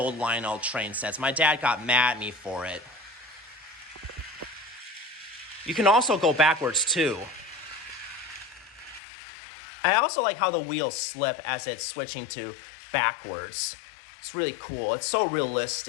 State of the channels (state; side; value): drops out; right; at 9.0 s